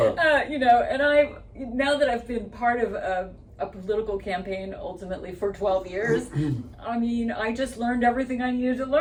now that I've been part of a political campaign ultimately for 12 years, I mean, I just learned everything I needed to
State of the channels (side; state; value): both; identical; correlation 1.00